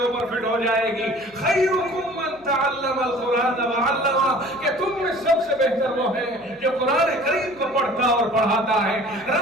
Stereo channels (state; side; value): noise; right; hum, 30 dB below the sound